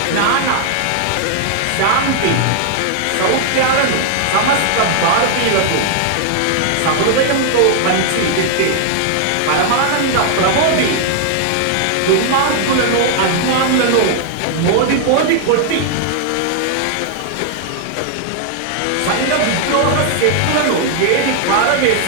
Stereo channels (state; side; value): different; both; correlation -0.01